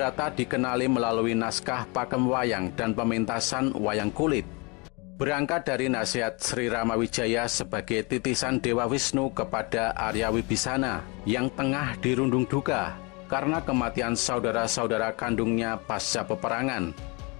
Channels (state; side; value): quieter; right; 29.5 dB